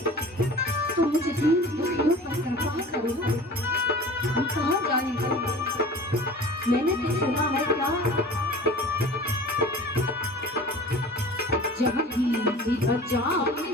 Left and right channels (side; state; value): both; normal; correlation 0.40